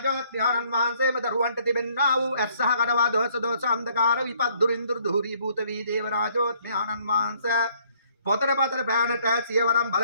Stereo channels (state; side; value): inverted; both; correlation -0.64